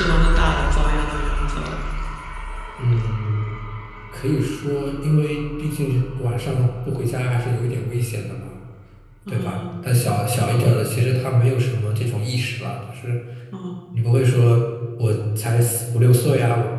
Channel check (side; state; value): both; identical; correlation 1.00